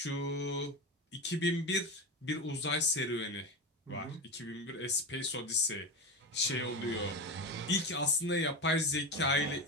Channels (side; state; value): both; normal; correlation 0.20